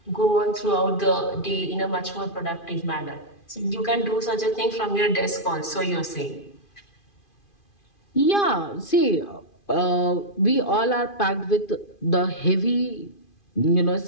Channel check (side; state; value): right; late; 2.5 ms